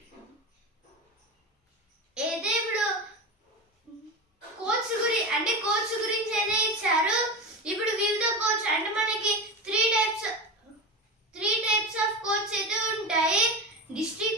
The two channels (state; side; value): normal; both; correlation 0.23